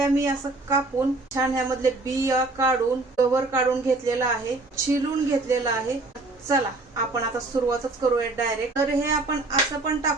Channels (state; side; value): quieter; left; 3.1 dB